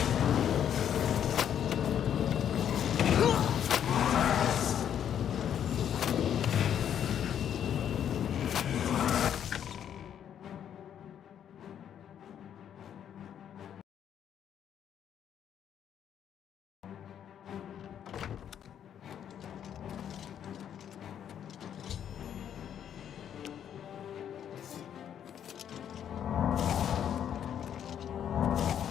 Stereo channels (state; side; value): quieter; right; 9.4 dB